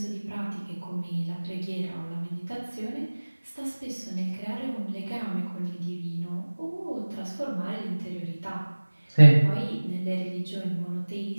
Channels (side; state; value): both; inverted; correlation -1.00